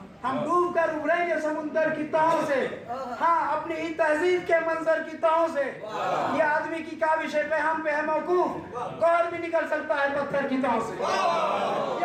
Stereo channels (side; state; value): both; identical; correlation 1.00